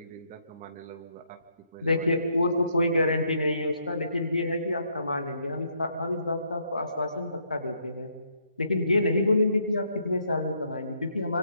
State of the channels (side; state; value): both; inverted; correlation -0.73